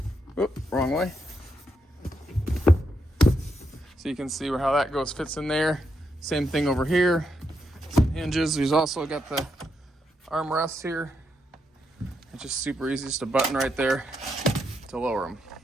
Oop, wrong way. So you can see how that fits in there. Same thing over here. Some hinges. We've also got the armrests here. It's just super easy, just a button right there to lower them.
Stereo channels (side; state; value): both; normal; correlation 0.81